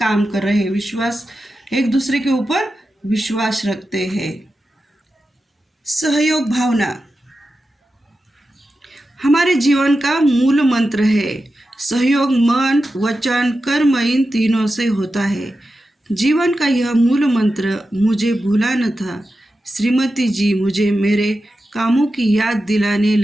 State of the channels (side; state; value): both; normal; correlation 0.91